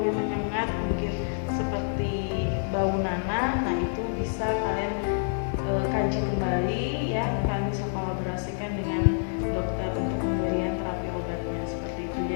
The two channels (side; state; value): right; silent; digital silence